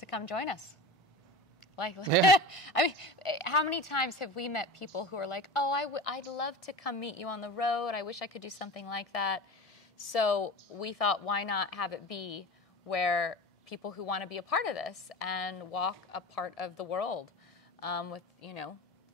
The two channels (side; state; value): both; normal; correlation 0.31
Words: come join us. Like, Yeah. I mean, how many times have we met people who are like, oh, I'd love to come meet you on the road. I wish I could do something like that. So we thought, why not have it be where people who want to be a part of this and walk a part of the world with,